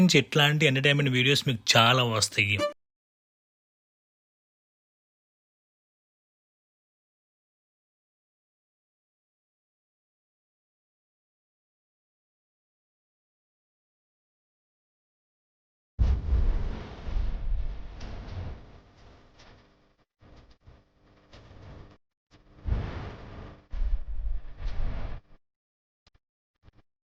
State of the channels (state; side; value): identical; both; correlation 1.00